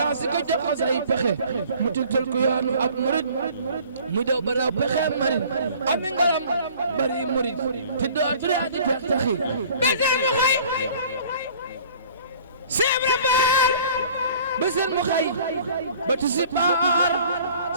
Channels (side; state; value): both; inverted; correlation -0.50